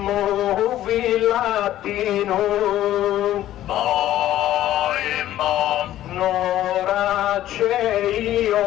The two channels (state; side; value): quieter; right; 13.3 dB